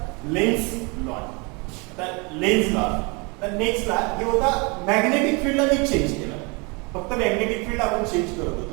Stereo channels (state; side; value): quieter; left; 29.7 dB